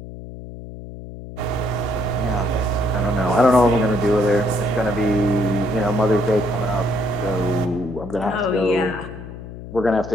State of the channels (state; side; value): noise; left; hum, 12 dB below the sound